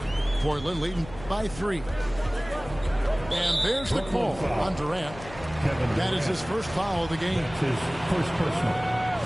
Portland leading by 3. And there's the call on Durant. That is his first foul of the game. That's his first personal.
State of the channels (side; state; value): left; noise; hum, 15 dB below the sound